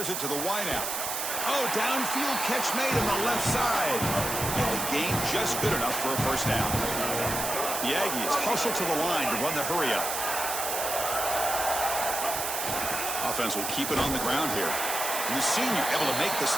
it to the wideout. Oh, downfield catch made on the left side. And the gain just good enough for a first down. The Aggies hustle to the line to run the hurry-up. Offense will keep it on the ground here. And the senior able to make the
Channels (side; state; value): right; noise; hiss, 2 dB below the sound